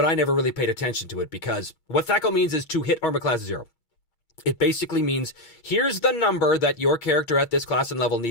I never really paid attention to it because what THACO means is to hit armor class 0. It basically means here's the number that your character at this class and level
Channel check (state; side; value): late; right; 8.5 ms